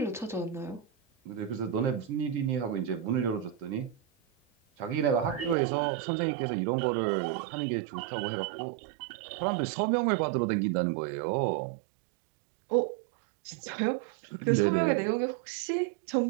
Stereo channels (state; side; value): drops out; left; at 5.6 s